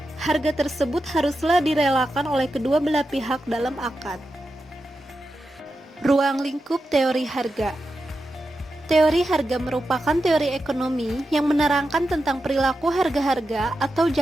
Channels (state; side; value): normal; both; correlation 0.89